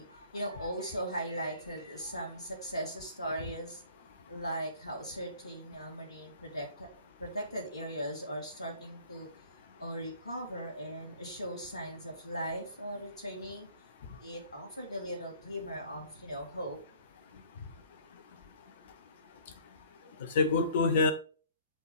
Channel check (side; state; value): both; inverted; correlation -0.55